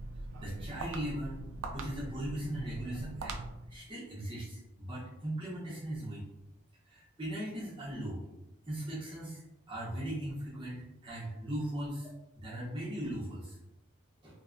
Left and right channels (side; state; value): both; normal; correlation 0.74